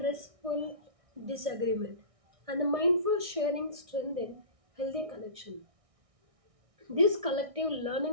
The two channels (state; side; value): late; left; 1.6 ms